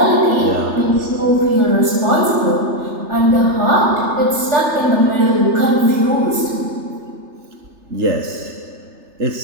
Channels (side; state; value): left; late; 3.3 ms